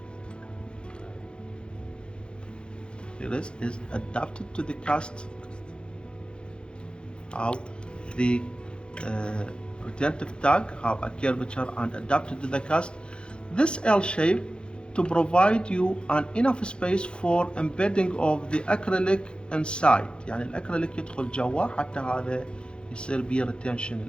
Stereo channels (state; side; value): late; right; 0.053 ms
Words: Here is adapted to the cast. How the retentive tag have a curvature and adapted to the cast. This L shape to provide you an enough space for embedding of the acrylic inside. يعني الأكريليك يدخل جوا حتى هذا يصير بيه retention